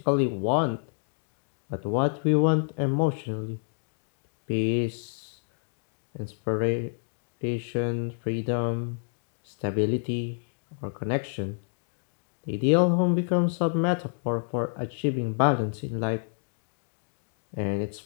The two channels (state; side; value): silent; right; digital silence